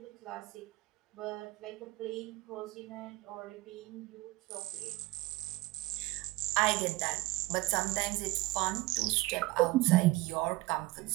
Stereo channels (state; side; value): quieter; left; 19.7 dB